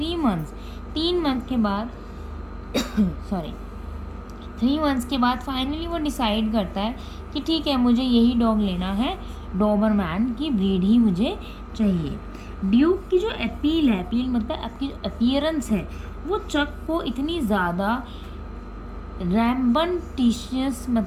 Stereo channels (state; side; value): identical; both; correlation 1.00